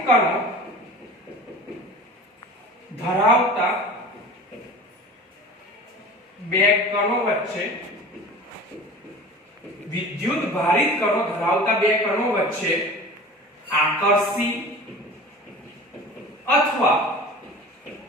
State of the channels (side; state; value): both; normal; correlation 0.38